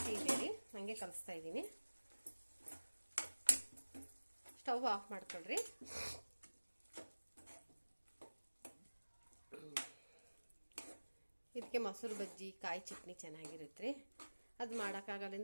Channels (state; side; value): inverted; both; correlation -1.00